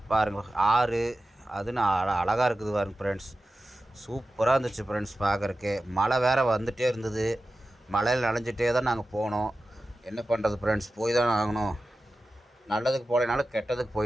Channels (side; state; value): both; normal; correlation 0.94